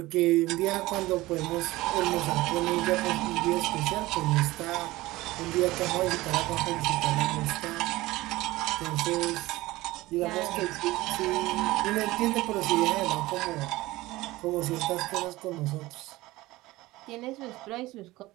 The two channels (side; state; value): left; quieter; 18.9 dB